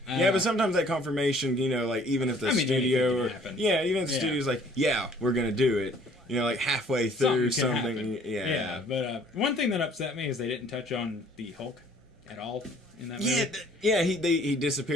Yeah, but sometimes that confirmation, like even if the studio anything can happen. even if the studio's like, yeah, we're gonna do it, like halfway through Something can something, happen. But one thing that upset me is they didn't touch on the Hulk at all in that movie. He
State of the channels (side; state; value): both; normal; correlation 0.57